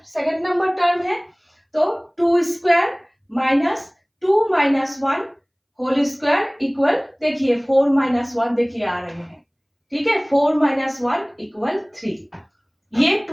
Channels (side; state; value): both; identical; correlation 1.00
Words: सेकेंड नंबर टर्म है, तो 2 square minus 2 minus 1 whole square equal, देखिए 4 माइनस 1 देखिए आ रहे हैं, ठीक है, 4 माइनस 1 इक्वल 3। ये